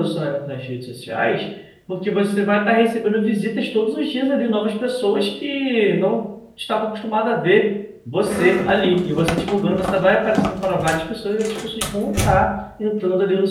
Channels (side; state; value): both; identical; correlation 1.00